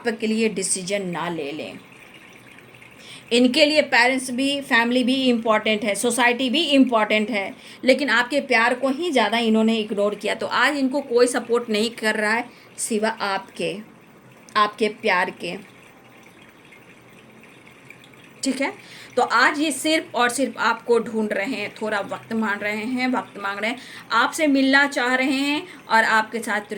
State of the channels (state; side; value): identical; both; correlation 1.00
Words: लिए डिसीजन ना ले लें। इनके लिए पेरेंट्स भी, फैमिली भी इम्पॉर्टेंट है, सोसाइटी भी इम्पॉर्टेंट है, लेकिन आपके प्यार को ही ज़्यादा इन्होंने इग्नोर किया। तो आज इनको कोई सपोर्ट नहीं कर रहा है सिवा आपके प्यार के, ठीक है। तो आज ये सिर्फ और सिर्फ आपको ढूंढ रहे हैं, थोड़ा वक्त मांग रहे हैं, वक्त मांग रहे हैं, आपसे मिलना चाह रहे हैं और आपके साथ